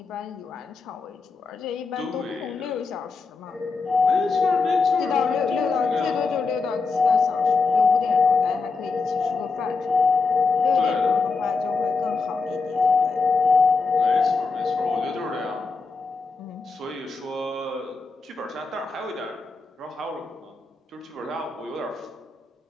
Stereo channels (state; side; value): quieter; right; 4.3 dB